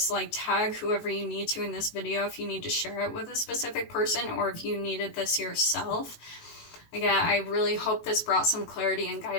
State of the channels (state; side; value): late; right; 19 ms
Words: Like, tag whoever you need to in this video if you need to share it with a specific person, or if you needed this yourself. Again, I really hope this brought some clarity and